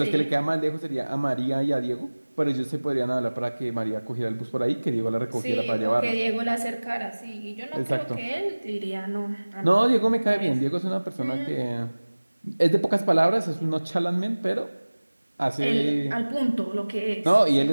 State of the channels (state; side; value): inverted; both; correlation -1.00